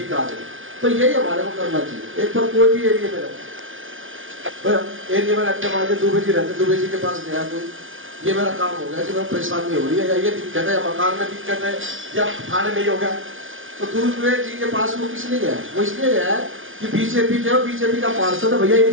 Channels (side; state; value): left; late; 0.58 ms